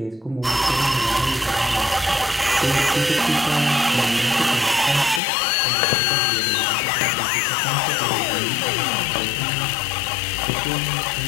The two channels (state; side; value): drops out; right; at 5.2 s